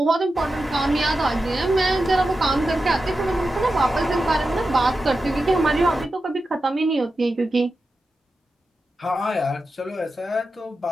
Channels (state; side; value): normal; both; correlation 0.91